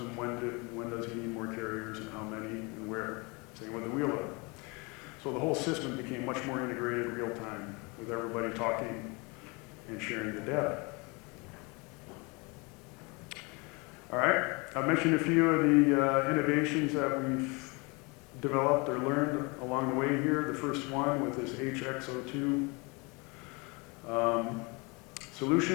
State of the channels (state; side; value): quieter; right; 28.5 dB